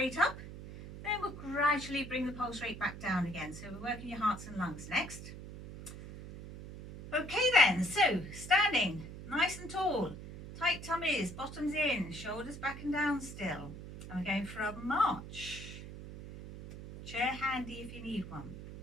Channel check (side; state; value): right; noise; hum, 12 dB below the sound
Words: up. Then we'll gradually bring the pulse rate back down again. So we're working your hearts and lungs next. Okay then, so standing nice and tall, tight tummies, bottoms in, shoulders back and down still. And we're going for a march. Chair handy if you need one.